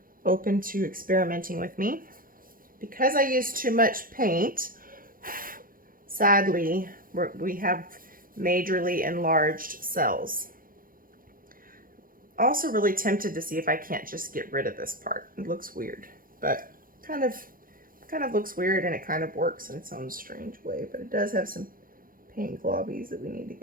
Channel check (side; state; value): left; late; 0.41 ms